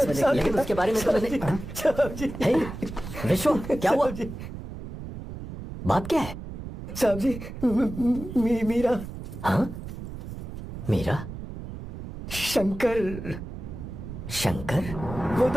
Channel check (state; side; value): noise; right; rumble, 10 dB below the sound